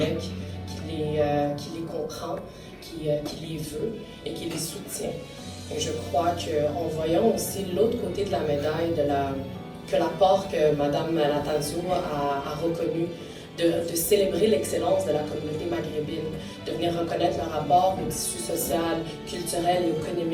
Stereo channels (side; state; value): both; identical; correlation 1.00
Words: qui les comprend, qui les veut et qui les soutient. Et je crois qu'en voyant aussi l'autre côté de la médaille, que l'apport que Mme Natanzio a reconnu, de célébrer l'excellence de la communauté maghrébine, de venir reconnaître leur rapport au tissu social, culturel et